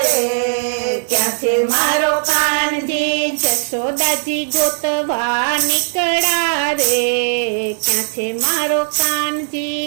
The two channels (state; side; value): silent; left; digital silence